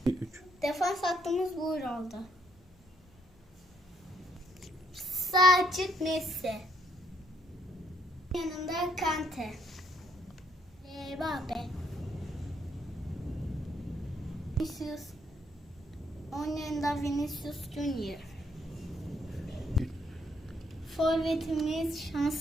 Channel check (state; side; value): normal; both; correlation 0.69